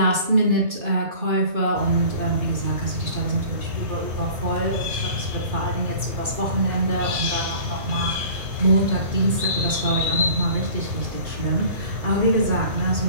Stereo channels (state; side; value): late; left; 2.4 ms